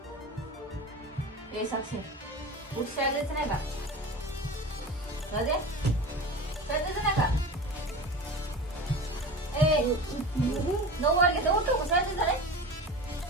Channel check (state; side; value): normal; both; correlation 0.31